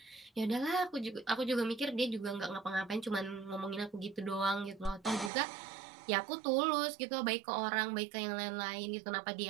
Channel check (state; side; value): drops out; left; at 5.3 s